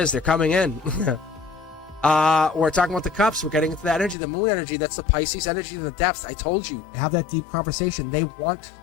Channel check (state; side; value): drops out; right; at 4.2 s